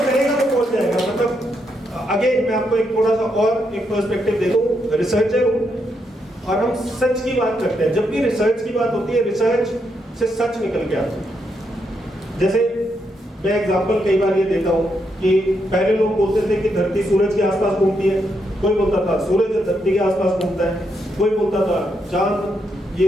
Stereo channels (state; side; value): normal; both; correlation 0.80